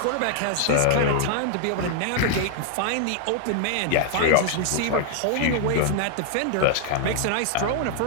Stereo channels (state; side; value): different; both; correlation 0.00